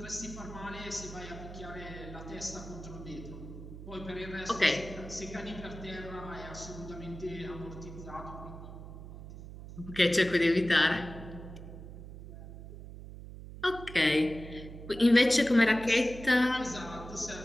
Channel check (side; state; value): right; noise; hum, 13 dB below the sound